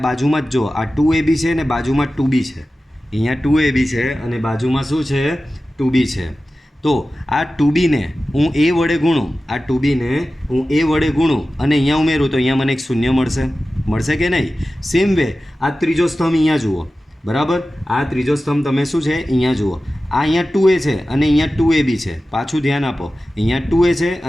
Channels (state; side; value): normal; both; correlation 0.95